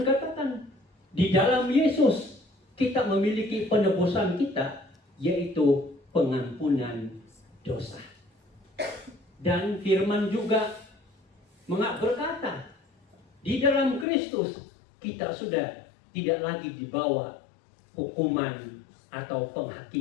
katakan, di dalam Yesus kita memiliki penebusan kita, yaitu pengampunan dosa. Dan firman juga berkata, di dalam Kristus kita sudah tidak lagi dibawa hukuman atau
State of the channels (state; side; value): drops out; right; at 14.1 s